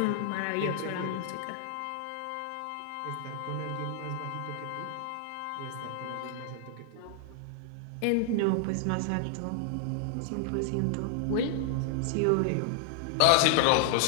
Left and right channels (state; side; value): different; both; correlation 0.00